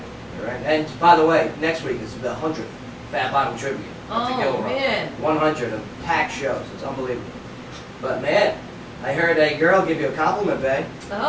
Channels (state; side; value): identical; both; correlation 1.00